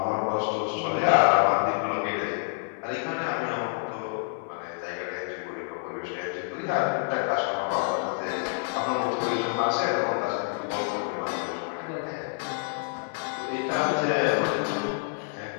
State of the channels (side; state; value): right; silent; 59 dB below the other